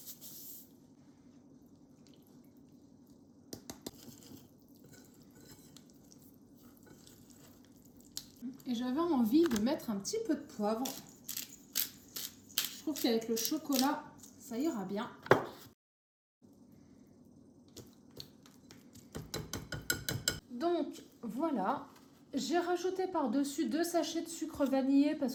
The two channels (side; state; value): both; identical; correlation 1.00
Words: Et j'avais envie de mettre un petit peu de poivre. Je trouve qu'avec le chocolat, ça ira bien. Donc voilà, j'ai rajouté par-dessus 2 sachets de sucre vanillé parce